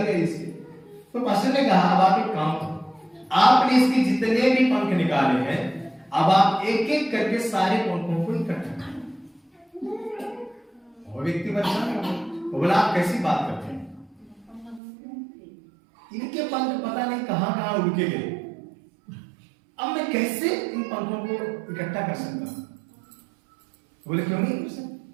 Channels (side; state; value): left; drops out; at 14.8 s